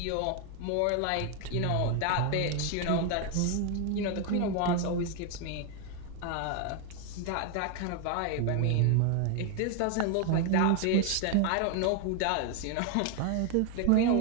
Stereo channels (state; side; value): different; both; correlation 0.01